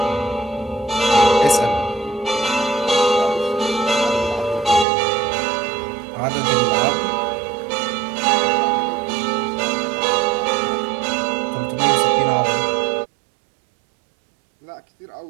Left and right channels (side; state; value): left; drops out; at 4.9 s